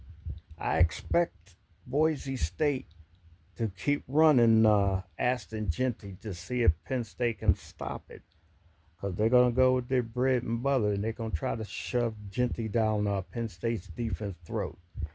I expect Boise State to keep running Aston Genty to see if Penn State can stop it. Because they're going to go with their bread and butter and they're going to try to shove Genty down Penn State's defense throat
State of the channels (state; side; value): identical; both; correlation 1.00